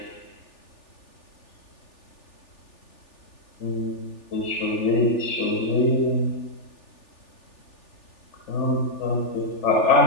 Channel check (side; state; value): right; late; 3.4 ms